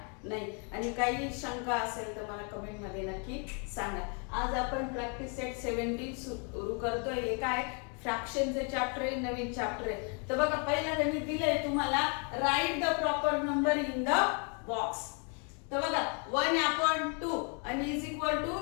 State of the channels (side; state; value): right; quieter; 38.2 dB